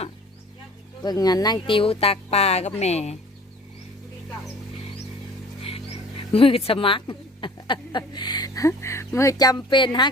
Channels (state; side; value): normal; both; correlation 0.47